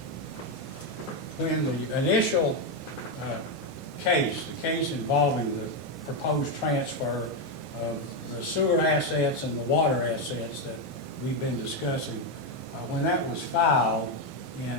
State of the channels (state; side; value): normal; both; correlation 0.06